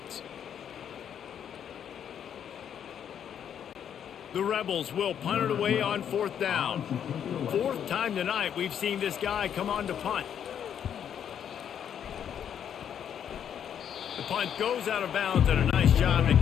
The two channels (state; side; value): quieter; right; 8.9 dB